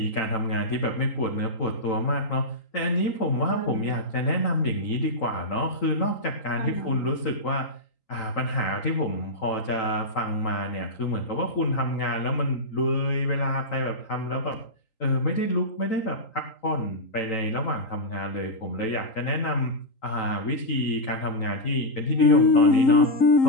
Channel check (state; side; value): late; right; 3.8 ms